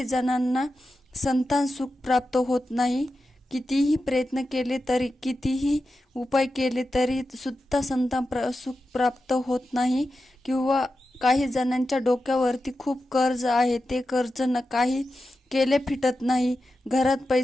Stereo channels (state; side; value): normal; both; correlation 0.91